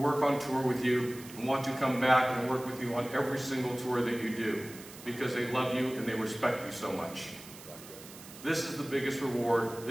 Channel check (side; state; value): right; noise; hiss, 17 dB below the sound